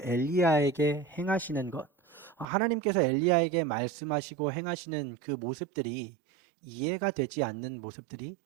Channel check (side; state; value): left; drops out; at 2.5 s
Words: 엘리야에게 행하시는 것, 하나님께서 엘리야에게 말씀하시고 행하시는 그 모습들이 이해가 되지 않는 모습들이